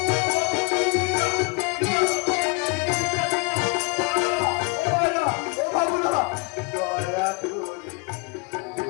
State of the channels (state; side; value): quieter; right; 30.3 dB